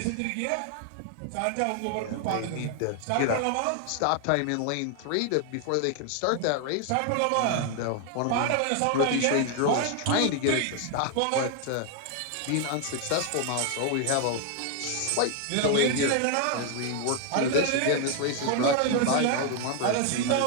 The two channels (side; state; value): both; different; correlation 0.00